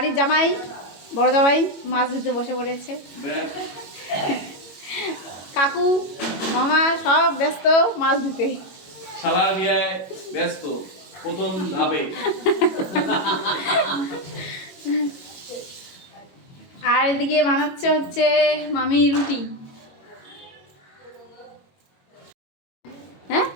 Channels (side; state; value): right; late; 22 ms